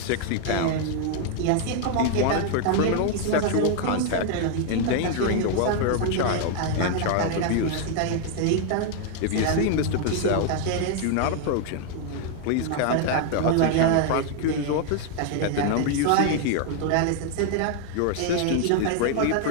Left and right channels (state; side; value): different; both; correlation 0.00